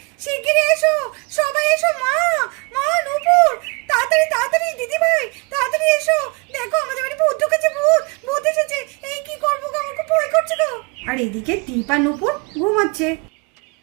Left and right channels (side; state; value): left; quieter; 30.6 dB